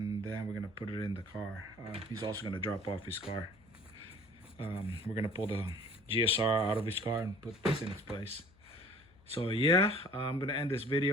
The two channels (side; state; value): left; noise; hum, 28 dB below the sound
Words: then we're gonna put it in the car. He's also gonna drop off his car. We're gonna pull the GSR out of his car and put this in its place. So yeah, I'm gonna end this